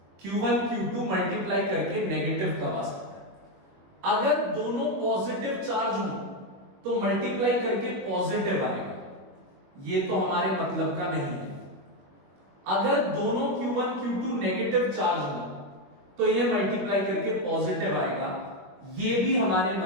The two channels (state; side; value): late; left; 21 ms